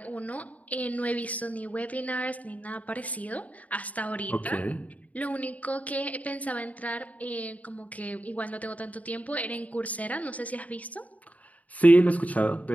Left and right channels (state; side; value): late; right; 0.071 ms